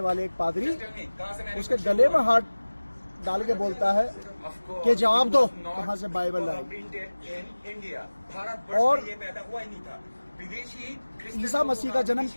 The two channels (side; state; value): both; inverted; correlation -1.00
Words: वाले एक पादरी उसके गले में हाथ डाल के बोलता है कि जवाब दो कहां से बाइबल आई, और ईसा मसीह का जन्म